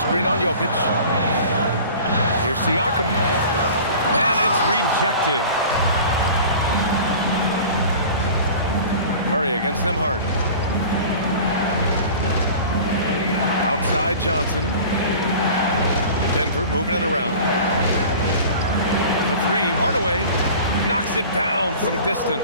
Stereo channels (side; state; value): both; inverted; correlation -0.41